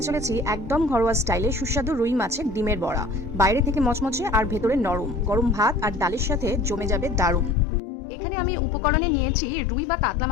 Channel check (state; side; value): drops out; right; at 7.6 s